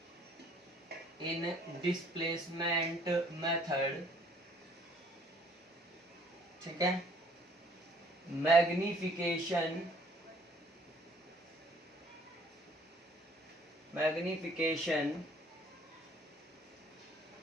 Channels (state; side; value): normal; both; correlation 0.60